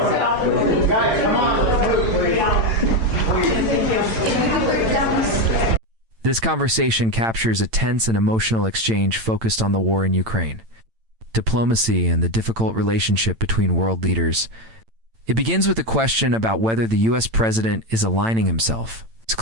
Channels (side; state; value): left; late; 8.9 ms